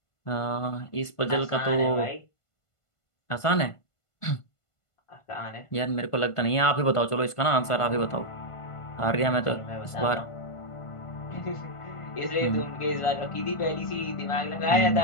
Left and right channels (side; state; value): right; late; 1.5 ms